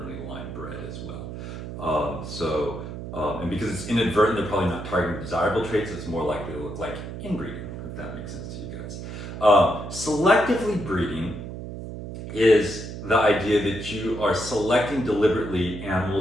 line bred as well. And because it's inadvertent, they're probably not targeting desirable traits, so it's more likely to look like inbreeding, if that makes sense to you guys. Selectively breeding is the idea that you are selecting deliberately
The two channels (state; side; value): noise; right; hum, 9 dB below the sound